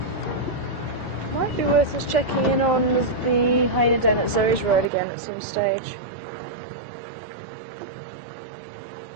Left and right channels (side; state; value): left; drops out; at 4.9 s